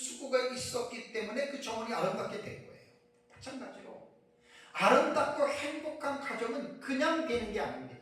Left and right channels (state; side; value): identical; both; correlation 1.00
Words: 있었기 때문에 그 정원이 아름답게 된 거예요. 마찬가지로 아름답고 행복한 가정은 그냥 되는 게